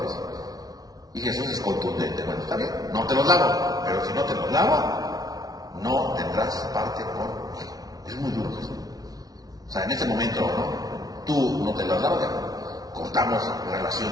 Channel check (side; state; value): left; late; 0.18 ms